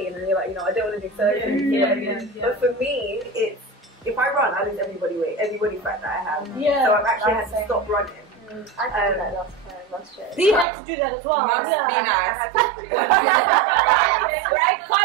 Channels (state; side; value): drops out; left; at 10.7 s